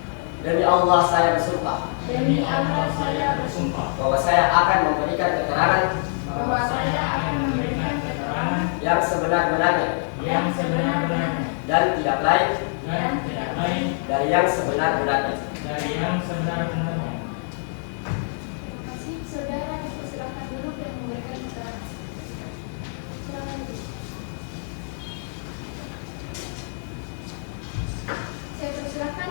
Demi Allah saya bersumpah Demi Allah saya bersumpah bahwa saya akan memberikan keterangan bahwa saya akan memberikan keterangan yang sebenar-benarnya dan tidak lain dari yang sebenar-benarnya. Terima kasih. Saudara dipersilakan duduk dan memberikan keterangan. Silakan duduk. Saya persilakan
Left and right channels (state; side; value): silent; right; digital silence